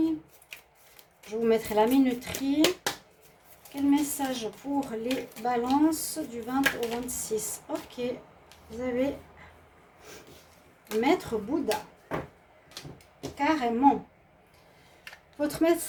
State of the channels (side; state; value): both; identical; correlation 1.00